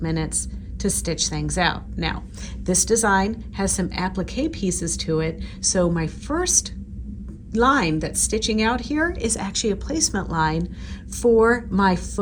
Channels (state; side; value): identical; both; correlation 1.00